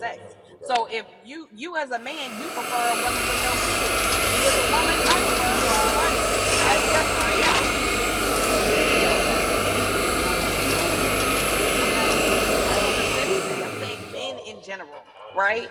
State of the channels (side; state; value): both; identical; correlation 1.00